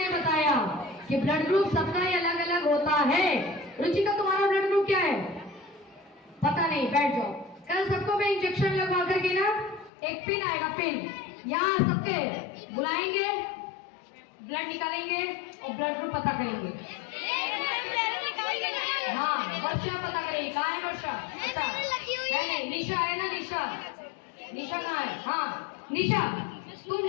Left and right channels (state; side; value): drops out; right; at 9.9 s